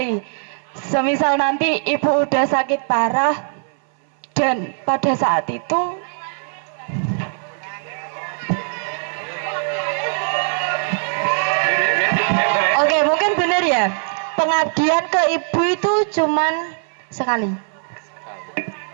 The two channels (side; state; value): left; silent; 65 dB below the other